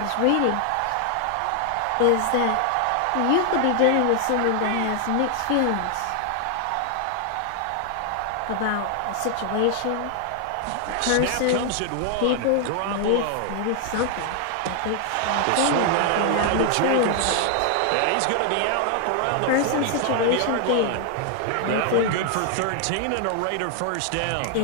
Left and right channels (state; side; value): different; both; correlation 0.00